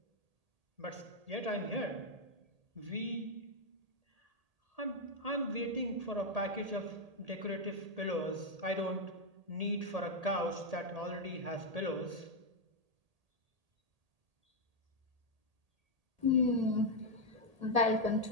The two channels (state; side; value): late; left; 1.8 ms